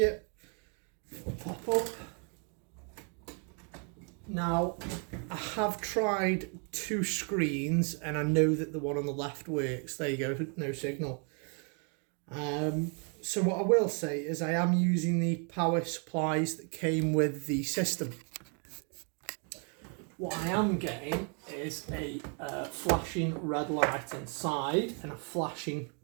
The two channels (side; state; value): left; quieter; 38.9 dB